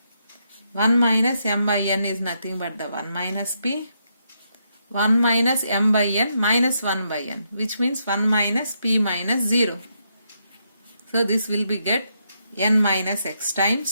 1 minus m by n is nothing but the 1 minus p, 1 minus m by n minus 1 by n, which means 1 minus p minus 0. So this will be get n minus x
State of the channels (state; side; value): inverted; both; correlation -0.79